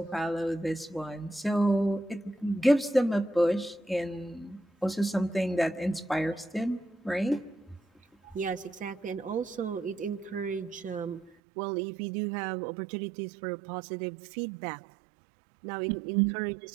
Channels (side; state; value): left; drops out; at 11.4 s